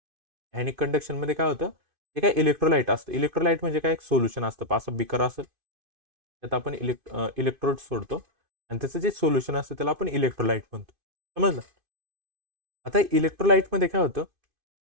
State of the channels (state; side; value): late; left; 2.5 ms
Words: Ionic कंडक्शनमध्ये काय होतं? हे काय इलेक्ट्रोलाइट असतं. इलेक्ट्रोलाइट म्हणजे काय? एक सोल्युशन असतं असं बिकर असेल, त्यात आपण इलेक्ट्रोड सोडतो आणि त्याचं जे सोल्युशन असतं त्याला आपण इलेक्ट्रोलाइट म्हणतो. समजलं? आता इलेक्ट्रोलाइटमध्ये काय होतं?